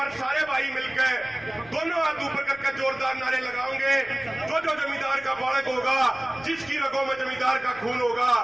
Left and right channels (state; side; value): noise; left; rumble, 25 dB below the sound